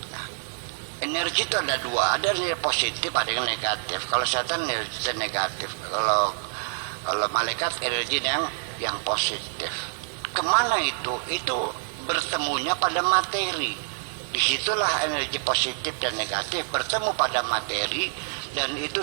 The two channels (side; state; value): left; silent; digital silence